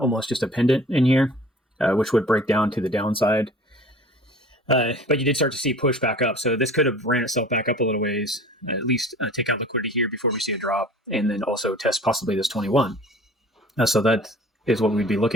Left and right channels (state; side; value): normal; both; correlation 0.45